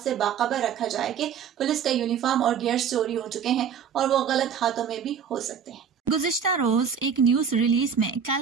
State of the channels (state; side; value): quieter; left; 7.4 dB